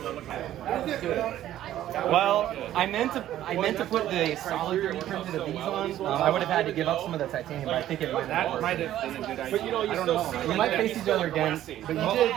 that looks Well, I meant to put the solid 3D printed of these on. I would have had to give up some of the titanium, but I think it might have. That might have been a good idea. But you know, I don't know. We might face each other again, but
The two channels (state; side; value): quieter; left; 12.7 dB